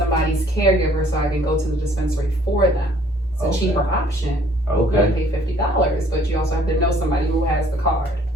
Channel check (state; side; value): normal; both; correlation 0.59